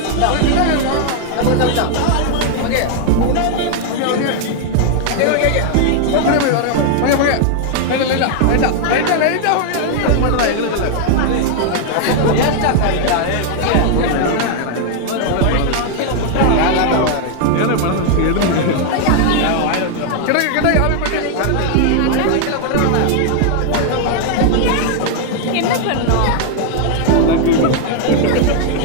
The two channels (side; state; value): both; different; correlation 0.00